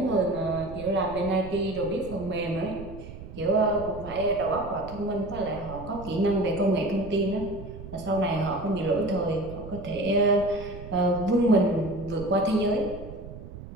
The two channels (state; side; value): noise; right; rumble, 13 dB below the sound